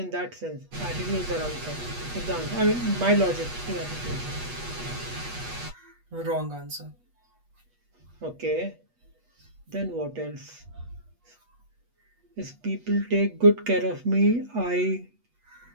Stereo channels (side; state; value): left; late; 8.3 ms